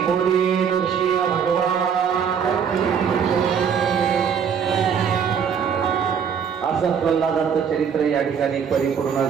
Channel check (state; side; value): quieter; left; 7.3 dB